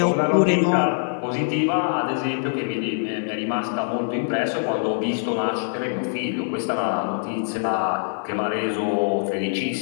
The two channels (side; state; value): right; silent; digital silence